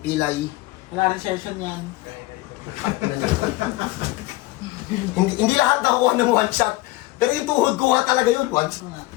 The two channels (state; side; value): quieter; right; 19.6 dB